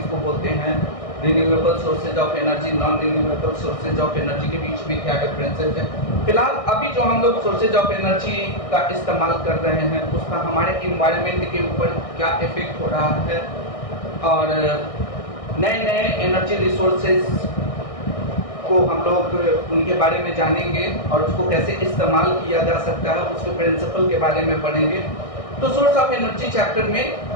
बोलते हैं, renewable sources of energy, non renewable sources of energy के बीच में क्या डिफरेंसेस है। फिलहाल अभी जो हम लोग सोर्सेज ऑफ एनर्जी का इस्तेमाल कर रहे हैं उसका हमारे इन्वायरमेंट के ऊपर क्या इफेक्ट हो रहा है, और नए नए एनर्जी रिसोर्सेज को हम लोग उनके बारे में जानेंगे और उसको कैसे इस्तेमाल किया जा सकता है, उसके प्रिंसिपल के बारे में पढ़ेंगे। तो सोर्स ऑफ एनर्जी चैप्टर में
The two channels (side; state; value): right; late; 1.6 ms